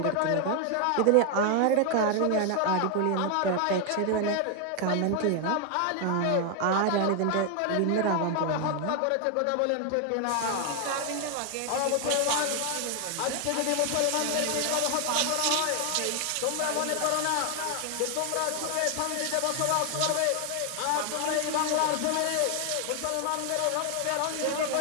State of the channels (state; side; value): different; both; correlation 0.00